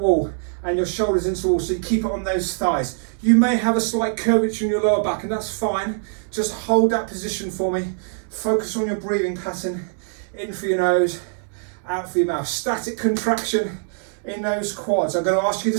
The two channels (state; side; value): silent; left; 64 dB below the other